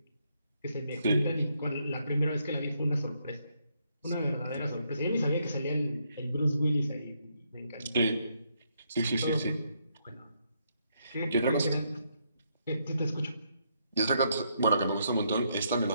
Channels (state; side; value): inverted; both; correlation -0.76